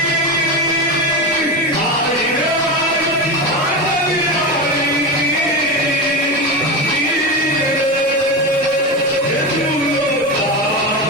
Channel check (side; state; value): both; normal; correlation 0.20